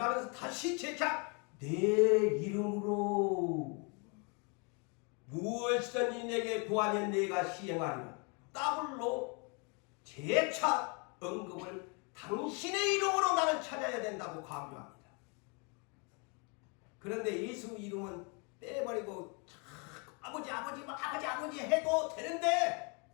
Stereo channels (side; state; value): right; quieter; 34.0 dB